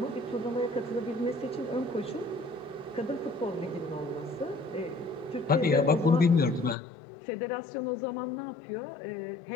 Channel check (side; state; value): right; drops out; at 6.8 s